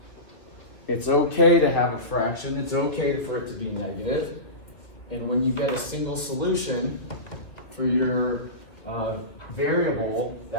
It's okay to have a fraction. It's okay for it to be negative. And when you get a single solution for your variable,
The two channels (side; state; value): right; late; 2.5 ms